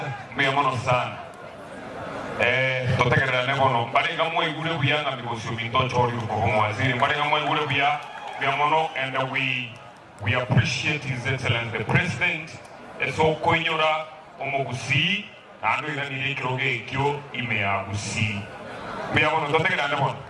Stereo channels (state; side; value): identical; both; correlation 1.00